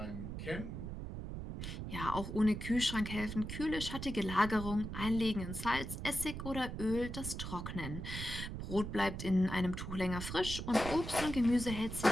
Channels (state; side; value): noise; right; rumble, 6 dB below the sound